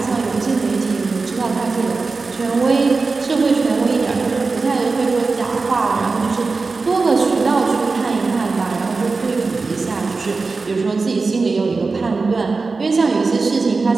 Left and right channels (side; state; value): left; quieter; 4.1 dB